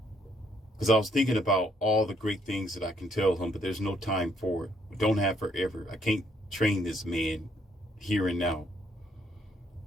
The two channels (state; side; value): normal; both; correlation 0.69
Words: Because I was thinking about all the great things that I can tell him, but there's no time for it. We don't have forever. I can't train this man here and now.